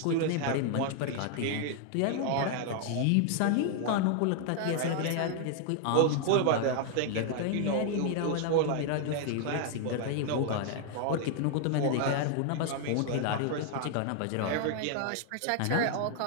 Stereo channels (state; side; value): different; both; correlation 0.00